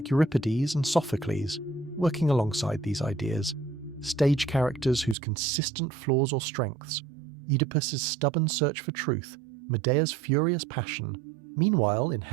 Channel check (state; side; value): drops out; left; at 5.2 s